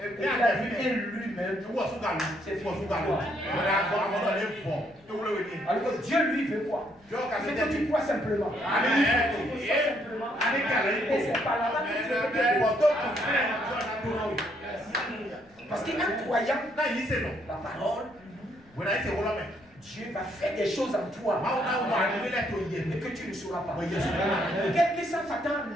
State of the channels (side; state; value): left; noise; rumble, 30 dB below the sound